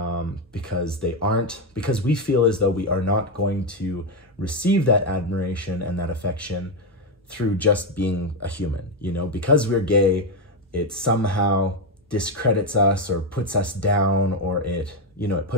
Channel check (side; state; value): both; normal; correlation 0.07